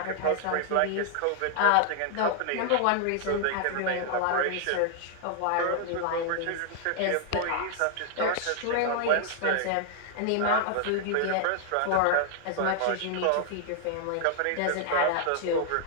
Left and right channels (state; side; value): different; both; correlation 0.00